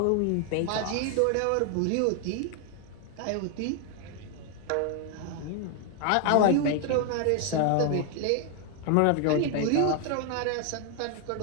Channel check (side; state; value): both; different; correlation 0.00